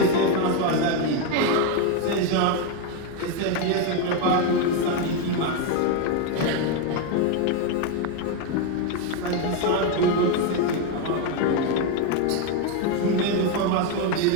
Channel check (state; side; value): different; both; correlation 0.02